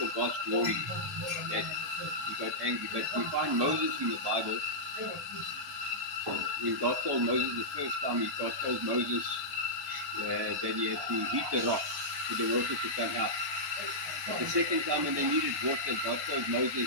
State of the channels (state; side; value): normal; both; correlation -0.11